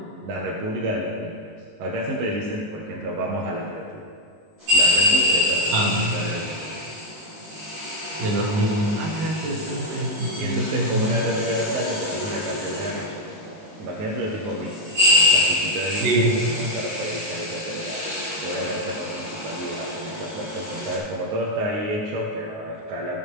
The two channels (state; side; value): late; left; 19 ms